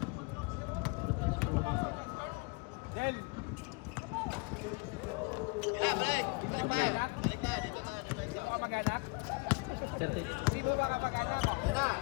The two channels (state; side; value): quieter; right; 28.6 dB